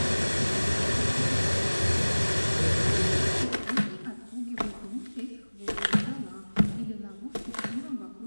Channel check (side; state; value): both; inverted; correlation -1.00